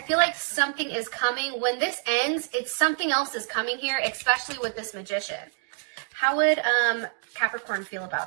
feel like something is coming. When this ends, it's something else is coming here, especially with this Magician. How would Capricorn feel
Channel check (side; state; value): left; silent; 60 dB below the other